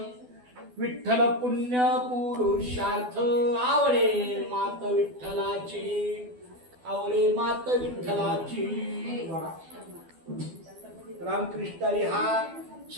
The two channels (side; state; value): left; late; 12 ms